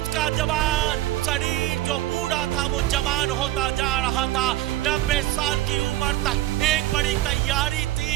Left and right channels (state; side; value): quieter; left; 15.5 dB